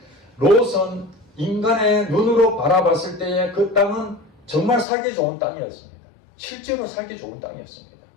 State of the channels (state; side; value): drops out; right; at 4.9 s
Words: 롯은 인간의 눈으로 바라봤을 때의 그 땅은 정말 살기 좋은 땅이었습니다. 실제로 살기 좋은 땅이었습니다.